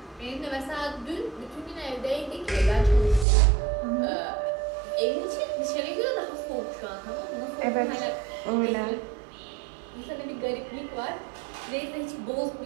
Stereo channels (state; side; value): drops out; left; at 3.2 s